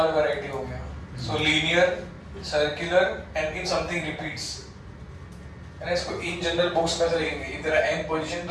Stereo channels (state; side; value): identical; both; correlation 1.00